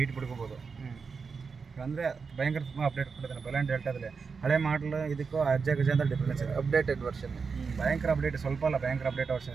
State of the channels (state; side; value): quieter; left; 5.3 dB